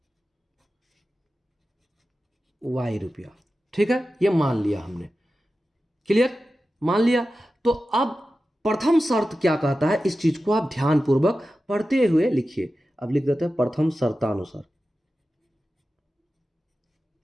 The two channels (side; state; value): both; normal; correlation 0.93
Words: y रुपया। ठीक है, ये मान लिया हमने। क्लियर, मान लिया। तो अब प्रथम शर्त क्या कहता है, इस चीज को आप ध्यानपूर्वक पढ़ते हुए लिखिए। अब लिख देते हैं प्रथम शर्तानुसार।